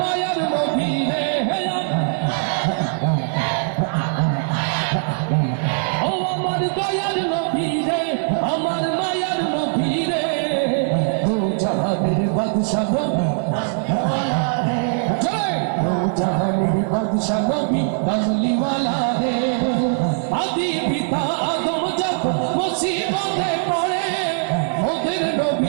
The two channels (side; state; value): left; silent; digital silence